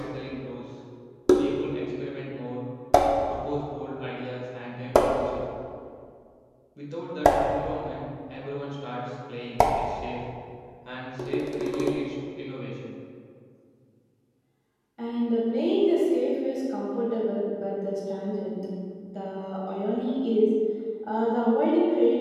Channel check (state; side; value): identical; both; correlation 1.00